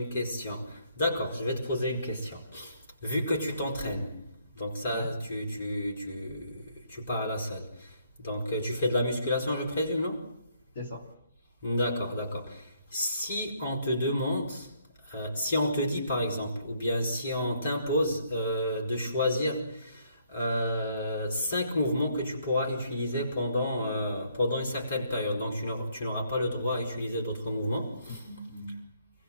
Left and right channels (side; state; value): both; inverted; correlation -0.69